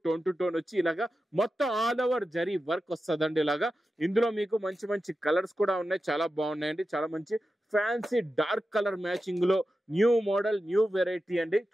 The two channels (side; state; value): both; normal; correlation 0.91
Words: టోన్ టు టోన్ వచ్చి ఇలాగా మొత్తం ఆల్ ఓవర్ జరీ వర్క్ వస్తుందండి. ఇలాగా ఇందులో మీకు మంచి కలర్స్ కూడా ఉన్నాయి. చాలా బాగున్నాయండి. చాలా మంచి ఫ్యాన్సీ డార్క్ కలర్ మ్యాచింగ్ లో న్యూ మోడల్ న్యూ వెరైటీ అండి.